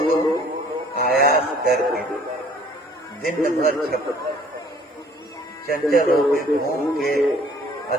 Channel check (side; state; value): both; normal; correlation 0.56